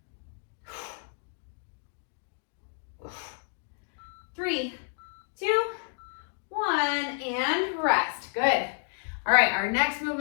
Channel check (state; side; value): silent; right; 58 dB below the other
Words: 3, 2, 1, and rest. Good. All right, our next